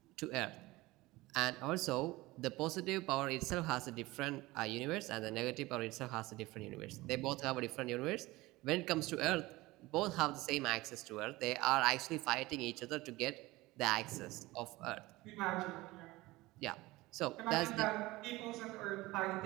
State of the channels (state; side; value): quieter; left; 20.0 dB